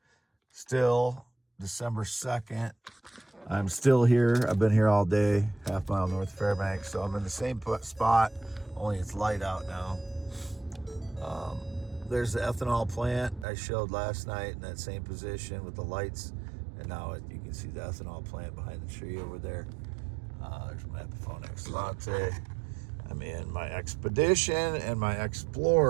still December 2nd. I'm still here. I've been here all day, half mile north of Fairbanks. So I'm in the same spot, only it's light out now. There's the ethanol plant I showed last night in that same position with the lights. And now you can see the ethanol plant behind the tree over there. There's my Epiphone Excellente. I'm in my Expedition and my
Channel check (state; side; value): drops out; left; at 13.5 s